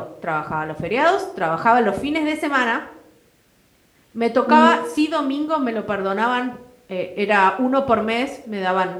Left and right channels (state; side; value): identical; both; correlation 1.00